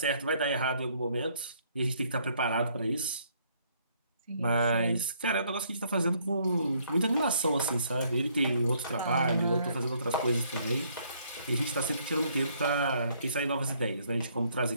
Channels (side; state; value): both; inverted; correlation -0.67